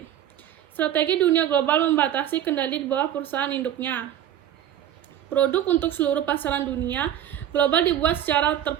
Strategi dunia global membatasi kendali di bawah perusahaan induknya. Produk untuk seluruh pasaran dunia global dibuat secara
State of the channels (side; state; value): left; quieter; 10.9 dB